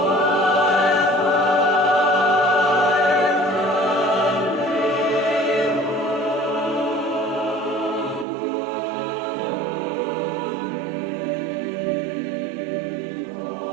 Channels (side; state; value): left; drops out; at 8.2 s